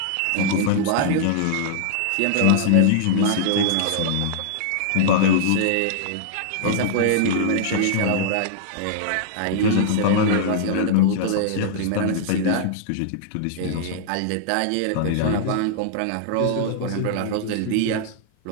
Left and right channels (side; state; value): both; different; correlation -0.01